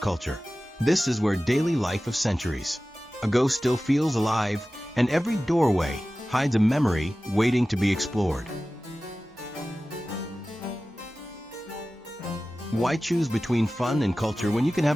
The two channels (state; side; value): normal; both; correlation 0.96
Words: This is where daily life of centuries ago still feels alive, and every doorway hides a memory waiting to be explored. Why choose between fun and culture when you can